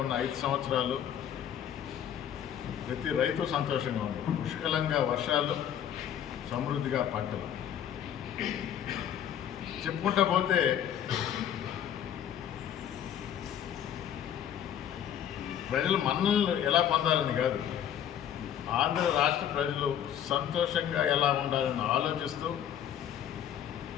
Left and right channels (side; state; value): right; quieter; 9.9 dB